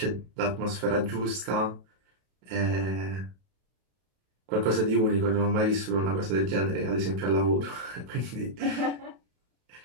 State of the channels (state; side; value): late; left; 32 ms